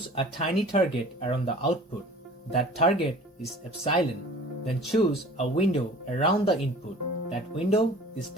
a tiny target around the output. That target is epsilon. Then choose a window around the input. That window is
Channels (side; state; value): both; normal; correlation 0.45